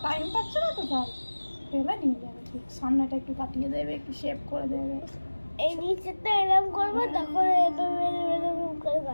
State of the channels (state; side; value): inverted; both; correlation -1.00